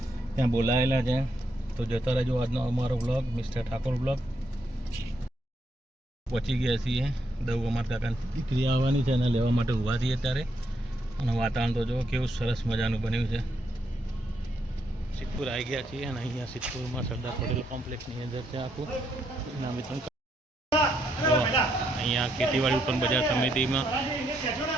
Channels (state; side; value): normal; both; correlation 0.77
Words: ત્યાં બોલાયેલા છે. તો જોતા રહેજો આજનો અમારો બ્લોગ, મિસ્ટર ઠાકોર બ્લોગ. પહોંચી ગયા છીએ દવ. અમારા કાકાની દીકરી આવવાની છે, એને લેવા માટે ઊભા છીએ અત્યારે. અને વાતાવરણ તો જુઓ કેવું સરસ મજાનું બન્યું છે. સિદ્ધપુર આવી ગયા છીએ અને અહીંયા સિદ્ધપુરમાં સરદાર પટેલ કોમ્પ્લેક્સની અંદર છે આખું ઇનામ વિતરણ. અહીંયા ખેતીવાડી ઉત્પન્ન બજાર સમિતિમાં